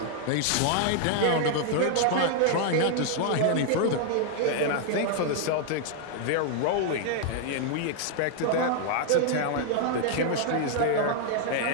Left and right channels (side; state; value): both; different; correlation 0.00